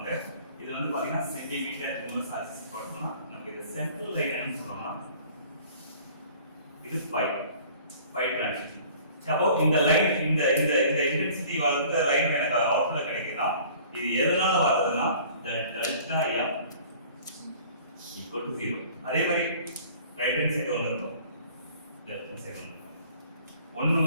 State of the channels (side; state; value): both; inverted; correlation -0.50